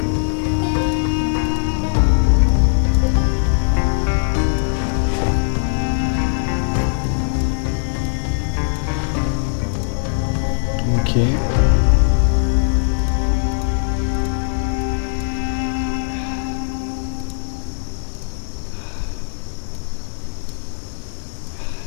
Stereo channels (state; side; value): silent; right; digital silence